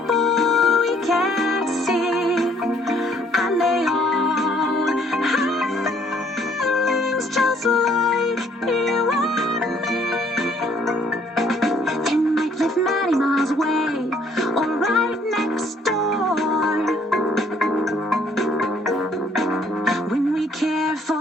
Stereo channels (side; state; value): both; normal; correlation 0.63